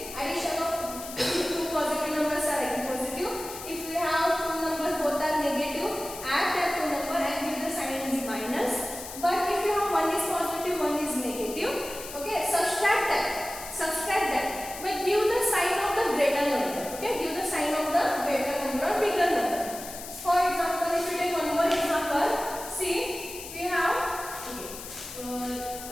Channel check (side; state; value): left; noise; hiss, 11 dB below the sound